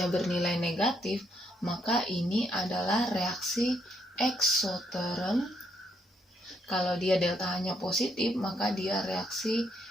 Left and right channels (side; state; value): both; normal; correlation 0.74